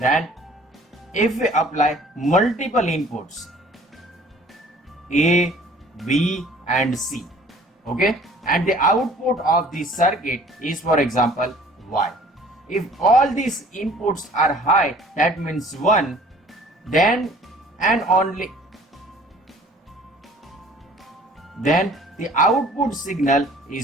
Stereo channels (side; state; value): both; normal; correlation 0.52